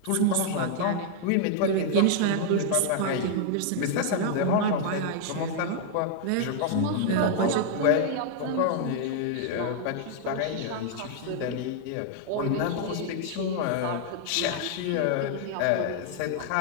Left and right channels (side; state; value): both; different; correlation -0.01